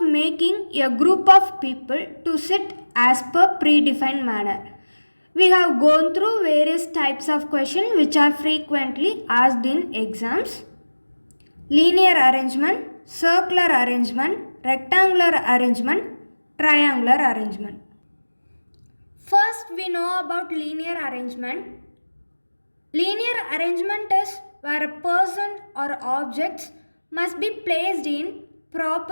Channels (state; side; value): inverted; both; correlation -1.00